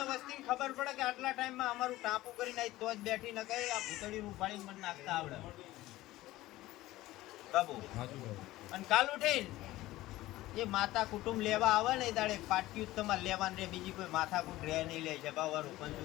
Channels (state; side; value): quieter; right; 16.9 dB